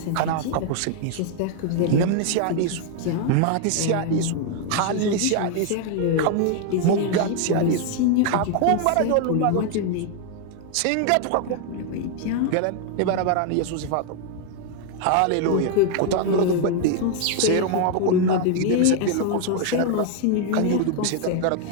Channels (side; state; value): both; different; correlation 0.00